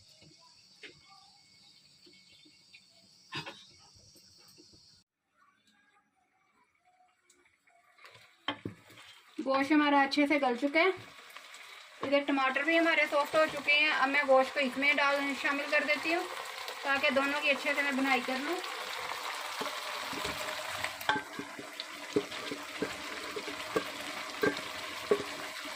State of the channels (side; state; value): both; identical; correlation 1.00